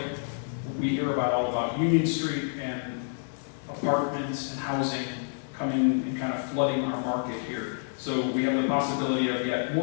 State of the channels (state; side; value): silent; right; 59 dB below the other